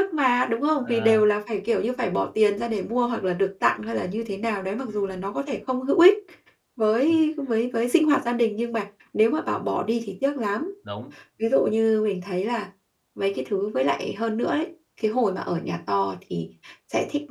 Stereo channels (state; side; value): identical; both; correlation 1.00